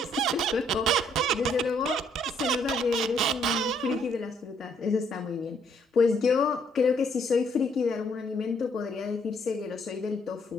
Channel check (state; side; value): normal; both; correlation 0.68